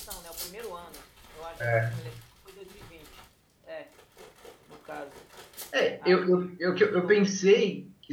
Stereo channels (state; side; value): identical; both; correlation 1.00